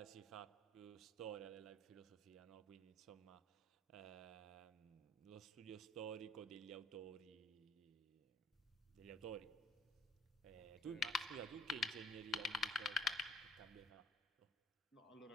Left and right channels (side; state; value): both; normal; correlation 0.59